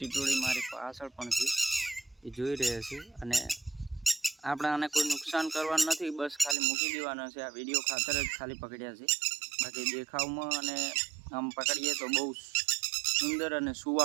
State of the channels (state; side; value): drops out; left; at 6.6 s